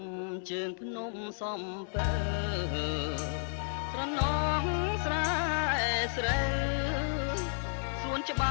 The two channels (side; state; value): right; silent; digital silence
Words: ជើងភ្នំសំពើស្រណងស្រែស្រូវសួនច្ប